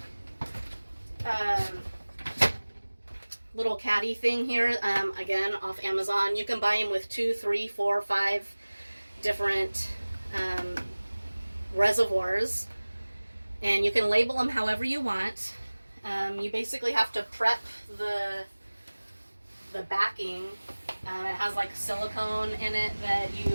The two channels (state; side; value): inverted; both; correlation -1.00